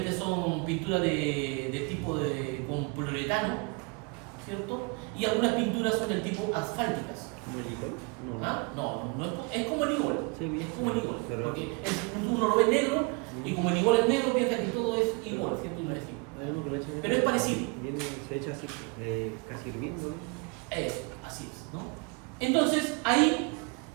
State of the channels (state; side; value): quieter; left; 30.6 dB